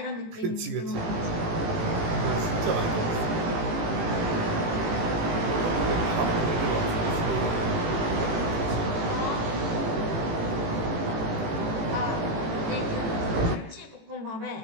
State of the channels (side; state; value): left; late; 18 ms